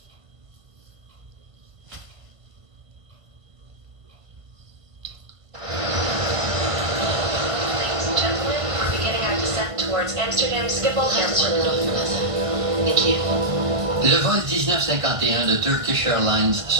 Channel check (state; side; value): late; left; 1.5 ms